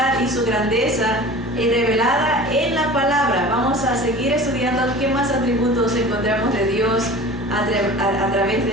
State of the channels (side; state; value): both; normal; correlation 0.39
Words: y su grandeza revelada en la palabra. Vamos a seguir estudiando qué más atributos encontramos de Dios a través de